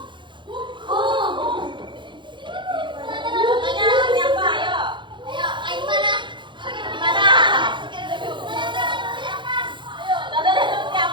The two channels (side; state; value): left; late; 0.23 ms